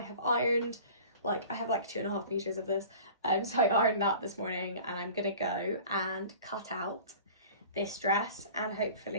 ironed, I have like 2.5 meters of this. So I ironed that this morning, and I'm going to go and cut out this dress and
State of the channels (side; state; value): both; inverted; correlation -0.43